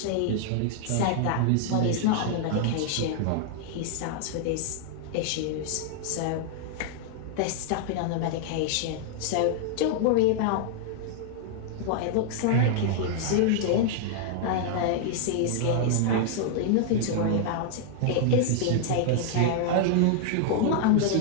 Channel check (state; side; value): different; both; correlation -0.01